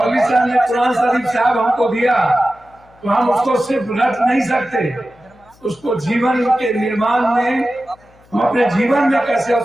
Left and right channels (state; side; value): noise; left; hum, 29 dB below the sound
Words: साहब ने कुरान शरीफ साहब हमको दिया, तो हम उसको सिर्फ रट नहीं सकते, उसको जीवन के निर्माण में, हम अपने जीवन में कैसे